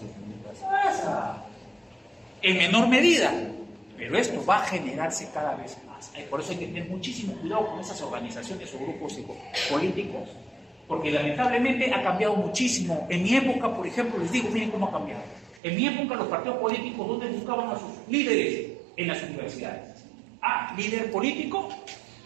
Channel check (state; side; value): drops out; left; at 15.6 s